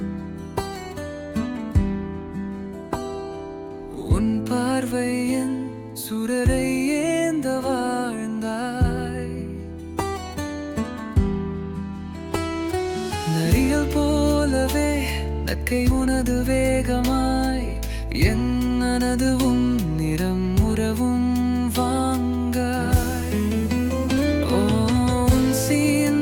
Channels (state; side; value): identical; both; correlation 1.00